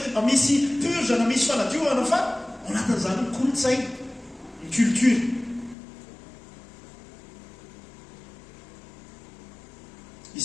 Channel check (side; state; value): right; drops out; at 5.8 s